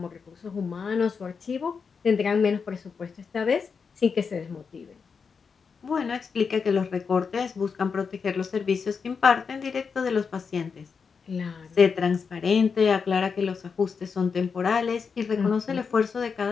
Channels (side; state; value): right; quieter; 5.7 dB